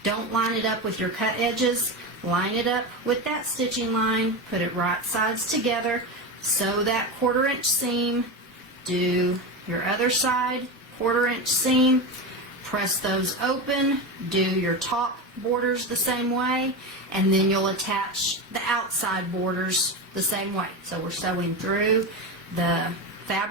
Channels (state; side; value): normal; both; correlation 0.20